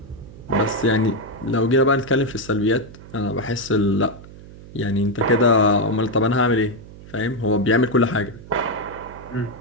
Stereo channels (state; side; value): noise; right; hum, 18 dB below the sound